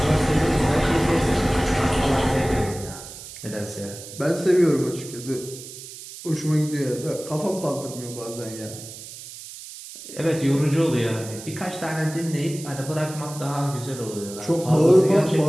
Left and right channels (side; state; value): right; noise; hiss, 14 dB below the sound